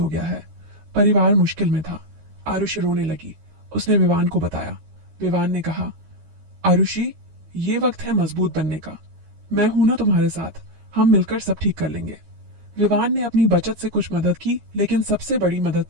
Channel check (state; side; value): late; left; 13 ms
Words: गया है। परिवार मुश्किल में था। आरुषि रोने लगी। उसने विवान को बताया। विवान ने कहा, आरुषि, ये वक्त है मजबूत बनने का। मैं हूं ना तुम्हारे साथ, हम मिलकर सब ठीक कर लेंगे। विवान ने अपनी बचत से कुछ मदद की, लेकिन सबसे बड़ी मदद